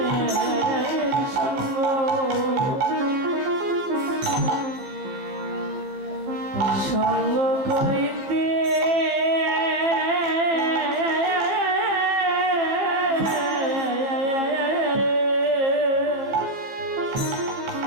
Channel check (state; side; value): late; left; 15 ms